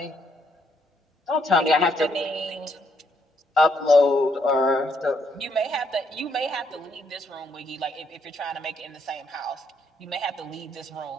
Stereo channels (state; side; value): normal; both; correlation 0.73